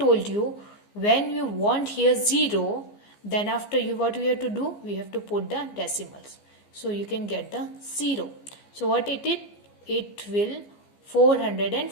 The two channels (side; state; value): right; late; 15 ms